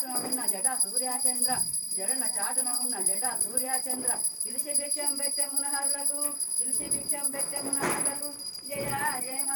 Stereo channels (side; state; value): both; identical; correlation 1.00